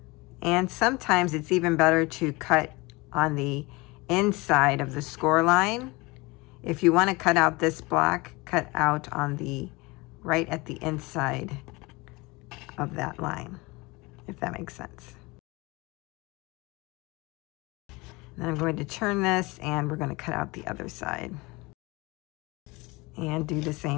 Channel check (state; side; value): quieter; right; 24.1 dB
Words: and sometimes it's even better to cut on the inside of the score line. If you want to cut out this block, cut out on the right at the inside of that line, if that makes sense. Then I'm going to turn this and we're going to cut out the other side. And do the